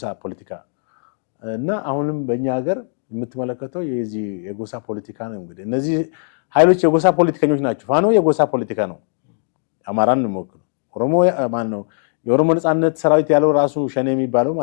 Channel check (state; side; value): silent; right; digital silence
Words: ፖለቲካ እና አሁንም በእኛ ሀገር የምትመለከተው የዚህ የጎሳ ፖለቲካ ነው። እንግዲህ እነዚህ ኃይሎች የጎሳ ፖለቲከኞች ናቸው። ፋኖ የጎሳ ፖለቲካ ነው። አማራን ነው የሚወክለው። ኦሮሞ ማን ነው? የኦሮሞ ነፃነት ሰራዊት ያለው ራሱ ሸኔ የሚባለው